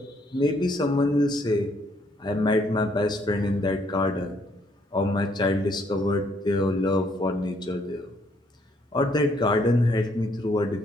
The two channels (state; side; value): normal; both; correlation 0.68